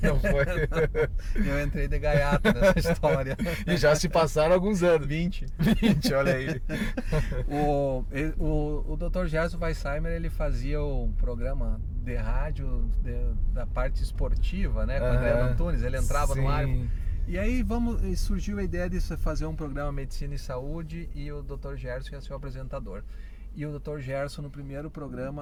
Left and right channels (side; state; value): both; identical; correlation 1.00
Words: Não foi? Eu entrei de gaiato nessa história. E já se passaram alguns anos. 20, olha aí. O Dr. Gerson Weissheimer, ele fazia um programa de rádio da parte esportiva, né? Com o André Antunes, ele entrava no ar. E aí surgiu a ideia de fazer um programa Medicina e Saúde, e o Dr. Gerson ia ser o apresentador. E o Dr. Gerson, no primeiro